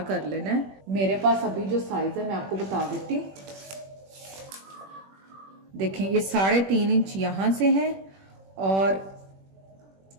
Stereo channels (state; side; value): late; left; 21 ms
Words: कर लेना है। मेरे पास अभी जो साइज है मैं आपको बता देती हूँ। देखें, ये 3.5 इंच यहां से है और